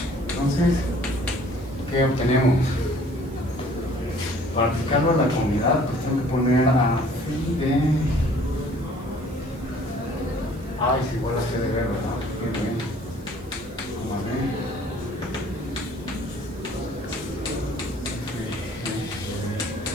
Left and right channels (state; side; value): noise; right; hiss, 25 dB below the sound